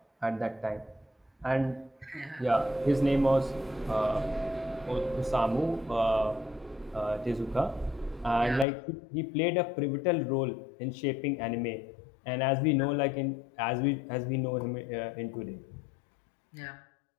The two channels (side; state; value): right; drops out; at 8.7 s